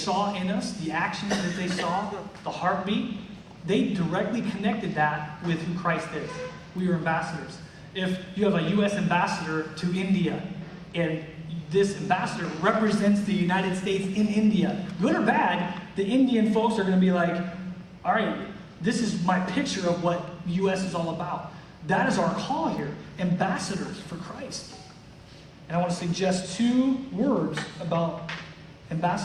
in us, the actions that they saw, the heartbeat, they directly connected that with who Christ is. We are ambassadors. If you have a U.S. ambassador to India, and this ambassador represents the United States in India, good or bad, the Indian folks are going to be like, all right, this is my picture of what the U.S. is all about. That is our call here, ambassadors for Christ. And I want to suggest 2 words about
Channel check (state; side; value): identical; both; correlation 1.00